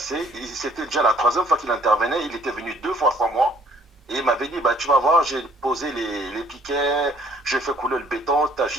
C'était déjà la troisième fois qu'il intervenait. Il était venu 2 fois sans moi. Et il m'avait dit, bah, tu vas voir, j'ai posé les piquets, j'ai fait couler le béton, tu as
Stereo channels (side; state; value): both; normal; correlation 0.60